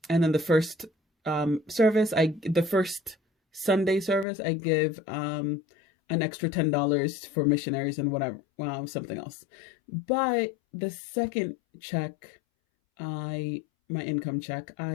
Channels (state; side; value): drops out; right; at 4.2 s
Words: then the first the first Sunday service, I give an extra $10 for missionaries and whatever, something else. But the second check, my income check,